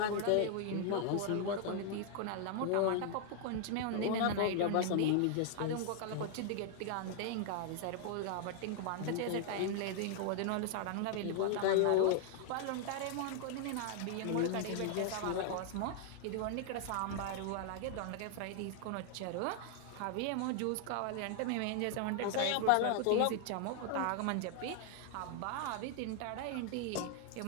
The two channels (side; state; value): both; different; correlation 0.00